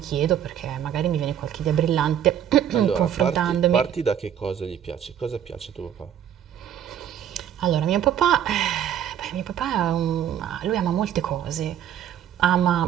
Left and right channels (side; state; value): left; quieter; 9.8 dB